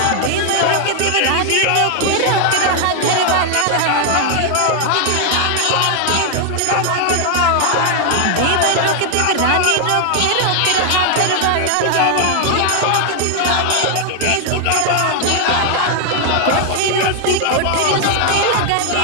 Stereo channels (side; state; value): both; different; correlation 0.00